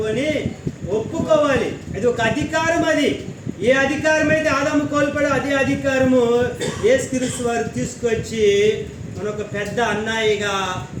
అని ఒప్పుకోవాలి. అది ఒక అధికారం. అది ఏ అధికారం అయితే ఆదాము కోల్పోయాడో అదే అధికారము యేసుక్రీస్తు వారు తీసుకొచ్చి మన ఒక పెద్ద అన్నయ్యగా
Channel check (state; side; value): identical; both; correlation 1.00